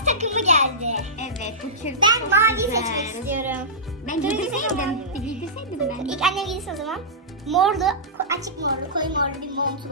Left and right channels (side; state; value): both; normal; correlation -0.17